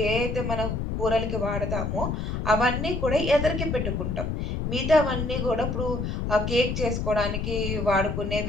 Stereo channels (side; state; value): left; noise; rumble, 2 dB below the sound